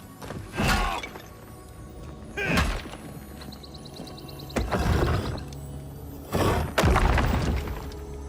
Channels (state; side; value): identical; both; correlation 1.00